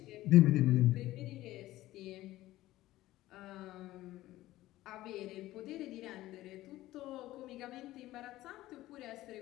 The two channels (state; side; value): quieter; right; 16.1 dB